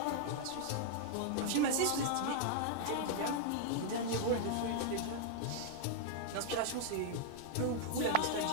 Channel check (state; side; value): different; both; correlation -0.01